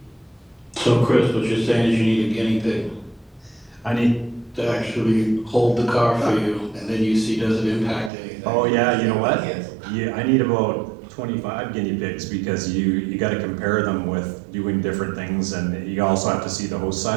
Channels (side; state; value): left; drops out; at 8.1 s